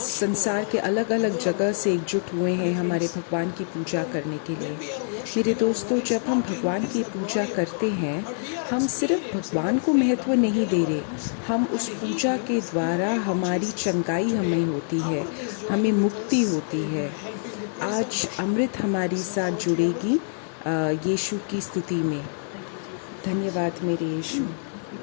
के अलग अलग जगह से एकजुट हुए हैं हमारे भगवान की पूजा करने के लिए। मेरे दोस्तों, जब हम भगवान की पूजा करते हैं, हम सिर्फ भगवान को महत्व नहीं दे रहे, हम उस पूजा के द्वारा हमारी चंगाई हमें होती है, हमें मुक्ति होती है। आज अमृत हमारी साथ जुड़ेगी यीशु की स्तुति में। धन्यवाद मेरे यीशु।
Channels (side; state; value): right; silent; digital silence